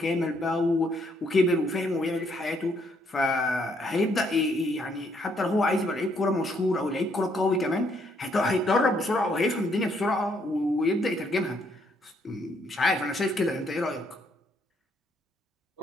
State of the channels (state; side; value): normal; both; correlation 0.71